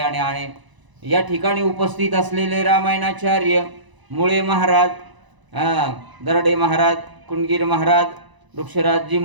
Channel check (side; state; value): left; late; 1.0 ms